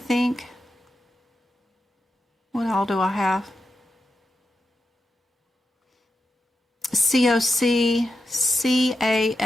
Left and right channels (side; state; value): both; normal; correlation 0.88